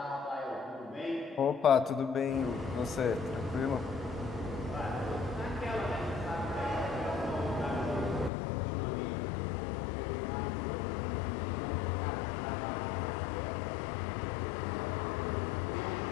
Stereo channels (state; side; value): drops out; right; at 8.3 s